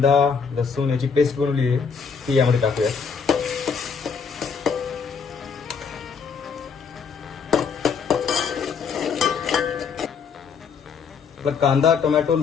लसूण याची पेस्ट बनवली आहे ती यामध्ये टाकूयात. आपला कांदा, टोमॅटो,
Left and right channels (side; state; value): right; quieter; 6.0 dB